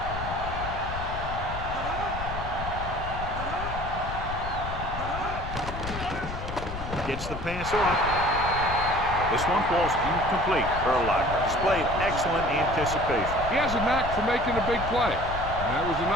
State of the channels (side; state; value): left; noise; rumble, 7 dB below the sound